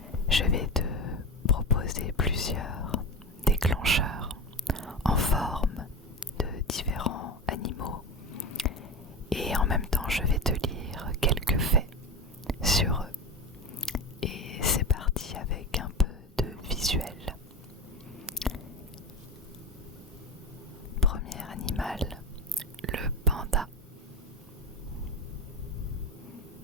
Je vais te proposer plusieurs déclencheurs en forme de différents animaux et en même temps je vais te lire quelques faits sur eux. Et c'est parti avec un peu de visuel. Premier animal, le panda.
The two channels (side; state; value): both; normal; correlation 0.25